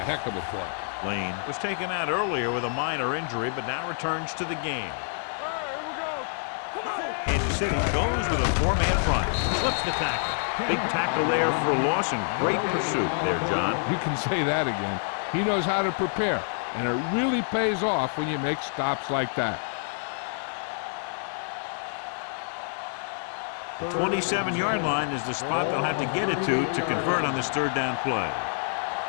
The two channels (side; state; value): right; silent; 60 dB below the other